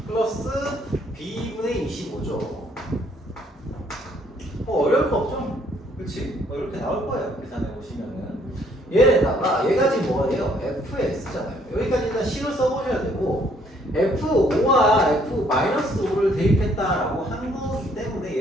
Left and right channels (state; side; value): normal; both; correlation 0.65